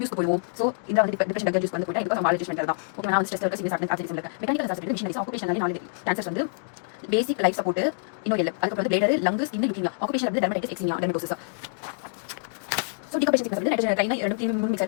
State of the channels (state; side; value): silent; right; digital silence